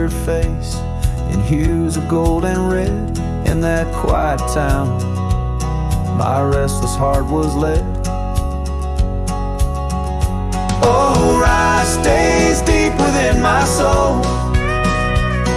face in hues of gold and red. In that quiet town, my restless heart was led. Oh, rye stays deep within my soul,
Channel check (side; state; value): both; identical; correlation 1.00